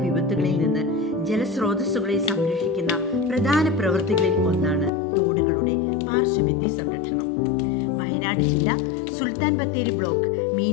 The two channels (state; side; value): drops out; right; at 4.9 s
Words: വിപത്തുകളിൽ നിന്ന് ജലസ്രോതസ്സുകളെ സംരക്ഷിക്കുന്ന പ്രധാന പ്രവൃത്തികളിൽ ഒന്നാണ് തോടുകളുടെ പാർശ്വഭിത്തി സംരക്ഷണം. വയനാട് ജില്ല സുൽത്താൻ ബത്തേരി ബ്ലോക്ക്